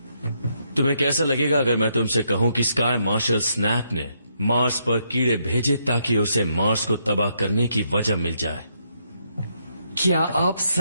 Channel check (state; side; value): inverted; both; correlation -0.76